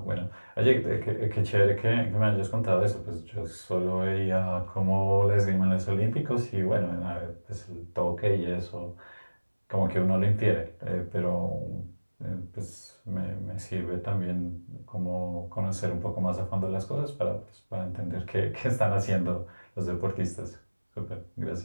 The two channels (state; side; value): inverted; both; correlation -1.00